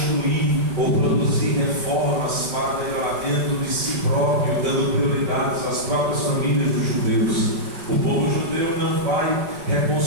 ou produzir reformas para melhoramento de si próprio, dando prioridades às próprias famílias dos judeus. O povo judeu não vai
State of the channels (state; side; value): late; left; 5.2 ms